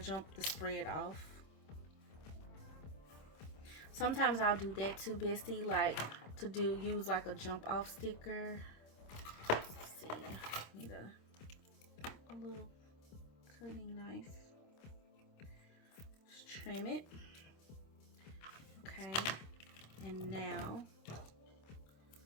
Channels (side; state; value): right; late; 26 ms